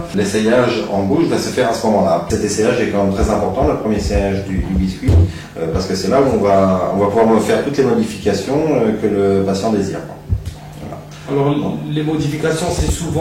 L'essayage en bouche va se faire à ce moment-là. Cet essayage est quand même très important, le premier essayage du biscuit, parce que c'est là où on va pouvoir faire toutes les modifications que le patient désire. Voilà. Alors les modifications, c'est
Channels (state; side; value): identical; both; correlation 1.00